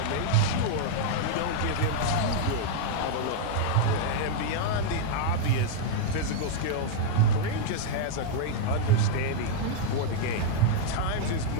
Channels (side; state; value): both; different; correlation -0.01